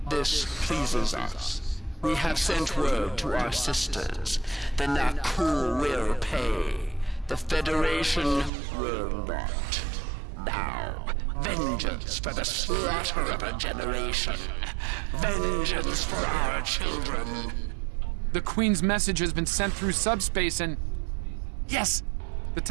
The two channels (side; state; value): left; drops out; at 8.5 s